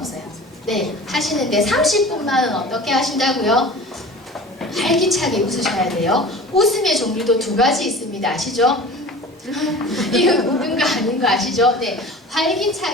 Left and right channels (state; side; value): normal; both; correlation 0.39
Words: 네, 하시는데 30분만은 어떻게 하신다고요? 활기차게 웃으셔야 돼요. 웃음의 종류도 2가지 있습니다. 아시죠? 이거 웃은 거 아닌 거 아시죠? 네,